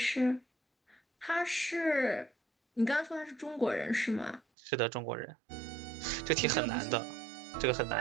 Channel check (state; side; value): drops out; left; at 4.4 s